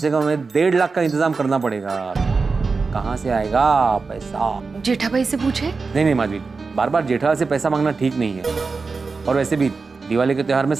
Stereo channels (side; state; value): left; quieter; 4.4 dB